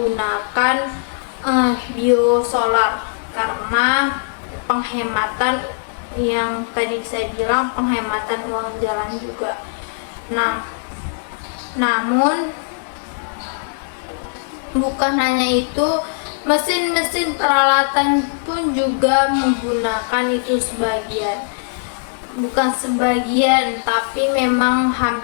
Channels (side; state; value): right; silent; digital silence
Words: biosolar karena penghematan, yang tadi saya bilang, penghematan uang jalan juga. Namun bukan hanya itu, mesin-mesin peralatan pun juga menggunakan itu sebagian. Bukan sebagian, tapi memang